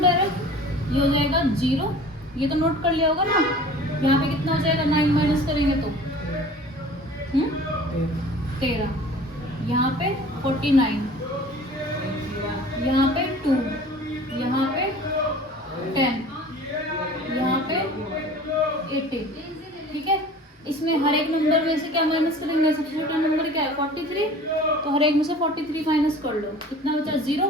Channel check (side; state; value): both; normal; correlation 0.44